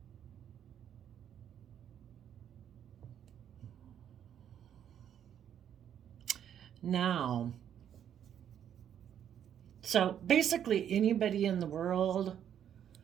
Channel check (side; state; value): left; quieter; 9.5 dB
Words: Now, so basically, anybody in the world